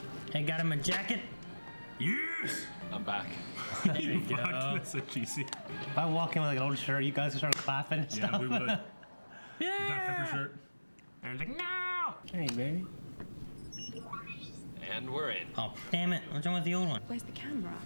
Hey, got him a jacket? Yes! I'm back. There you Fuck, go. that's so cheesy. If I walk in with like an old shirt, you guys would start clapping and stuff. Yeah, we would. Dr. Yeah! Pepper shirt. And I was like, no! Hey, baby. And we're in. Oh, damn it. What's wrong with the old one? Where's the camera?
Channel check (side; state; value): both; inverted; correlation -1.00